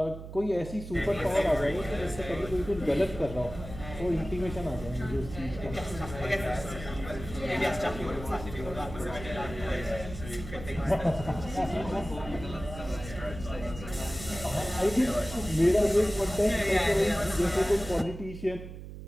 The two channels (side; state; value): right; noise; hum, 11 dB below the sound